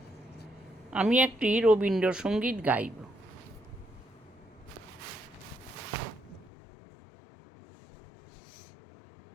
আমি একটি রবীন্দ্রসঙ্গীত গাইব।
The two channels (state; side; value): drops out; right; at 6.5 s